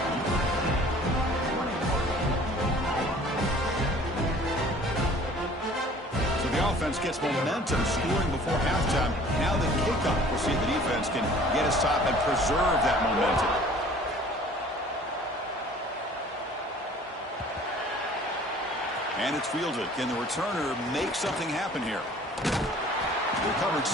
So the offense gets momentum, scoring before halftime. Now the kickoff. We'll see if the defense can get a stop and preserve that momentum. And it's fielded. Can the returner make something happen here? The coverage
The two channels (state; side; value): normal; both; correlation 0.50